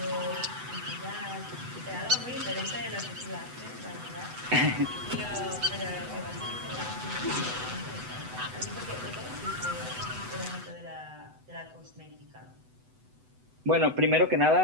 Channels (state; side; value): late; left; 8.0 ms